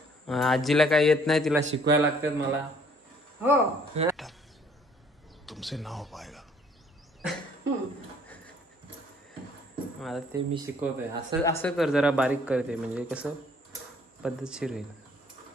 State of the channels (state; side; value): normal; both; correlation 0.60